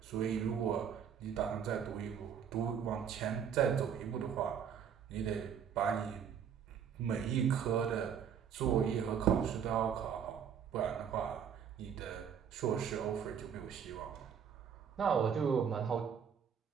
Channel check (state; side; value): quieter; left; 7.9 dB